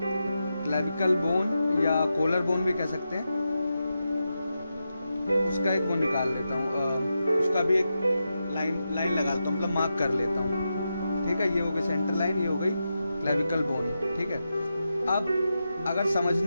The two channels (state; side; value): inverted; both; correlation -0.88